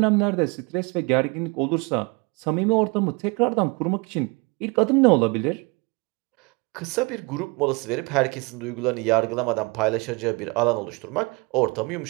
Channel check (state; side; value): quieter; left; 28.1 dB